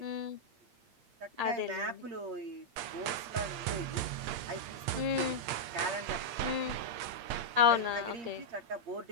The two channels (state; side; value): late; left; 8.7 ms